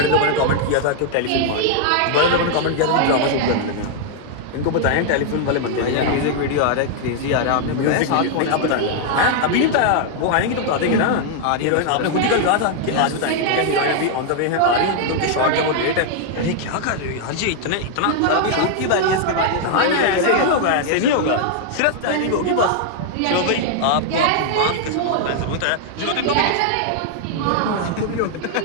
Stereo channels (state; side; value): different; both; correlation 0.00